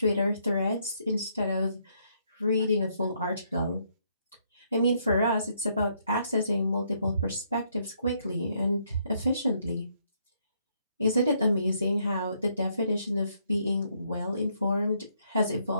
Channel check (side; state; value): both; inverted; correlation -0.72